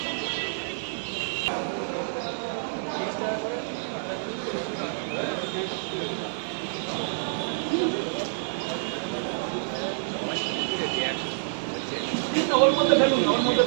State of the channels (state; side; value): silent; left; 60 dB below the other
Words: ওর মধ্যে ফেলুন, ওর মধ্যে